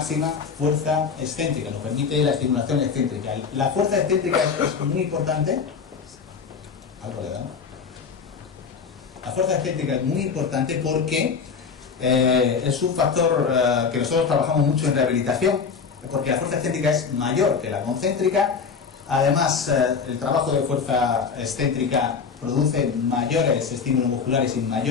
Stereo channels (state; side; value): quieter; right; 5.8 dB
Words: fuerza excéntrica, nos permite la estimulación excéntrica. La fuerza excéntrica es muy importante. Algo le damos. La fuerza excéntrica es muy importante porque es un factor que nosotros trabajamos mucho en rehabilitación, porque la fuerza excéntrica es mayor que la concéntrica. Además, el trabajo de fuerza excéntrica produce mayores estímulos musculares y